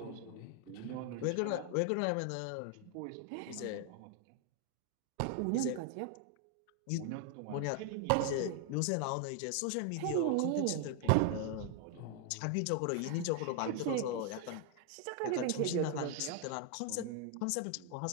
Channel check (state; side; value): different; both; correlation 0.00